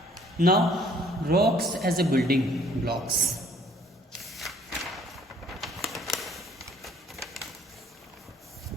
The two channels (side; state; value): both; normal; correlation 0.60